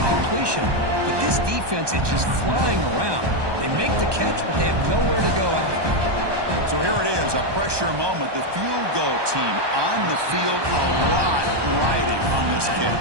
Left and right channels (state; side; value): late; left; 1.2 ms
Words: completion, but this defense is just flying around. They make the catch, but they have nowhere to go after. So here it is, a pressure moment. The field goal team on the field, a lot riding on this kick.